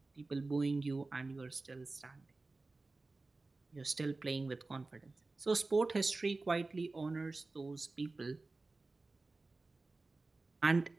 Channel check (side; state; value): left; quieter; 3.4 dB